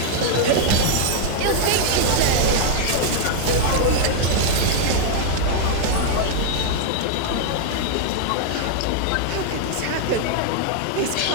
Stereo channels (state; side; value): different; both; correlation 0.00